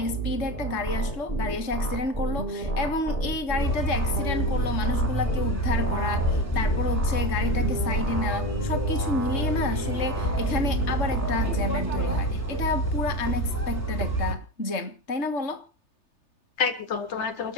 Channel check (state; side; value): late; right; 3.3 ms